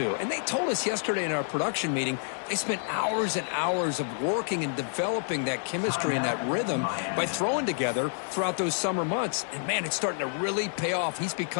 And they told us yesterday in our production meeting, they spent hours and hours of working and developing that chemistry and that rhythm by throwing together throughout those summer months. And, man, it's starting to really pay off. He's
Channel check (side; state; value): right; silent; digital silence